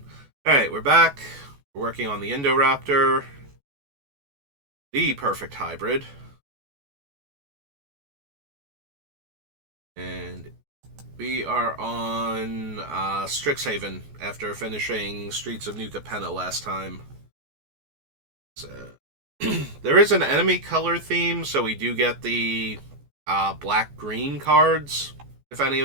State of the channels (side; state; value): left; late; 14 ms